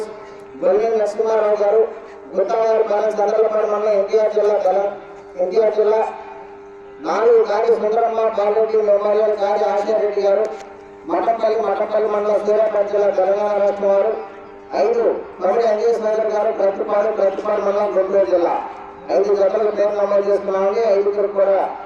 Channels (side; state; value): both; identical; correlation 1.00